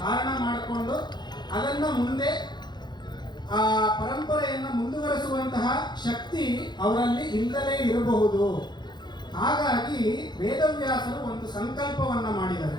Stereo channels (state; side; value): late; right; 0.21 ms